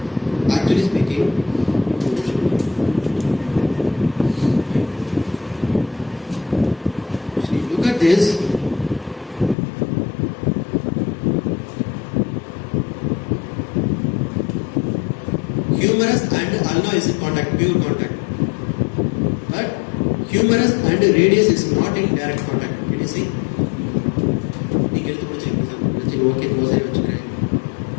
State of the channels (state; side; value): drops out; right; at 9.6 s